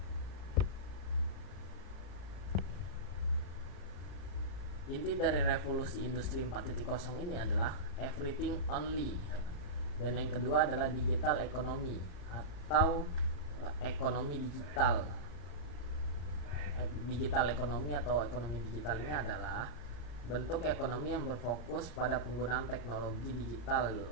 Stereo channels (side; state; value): right; late; 34 ms